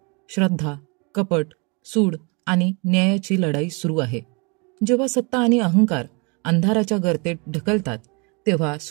श्रद्धा, कपट, सूड आणि न्यायाची लढाई सुरू आहे. जेव्हा सत्ता आणि अहंकार अंधाराच्या गर्तेत ढकलतात, तेव्हा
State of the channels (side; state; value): left; quieter; 31.8 dB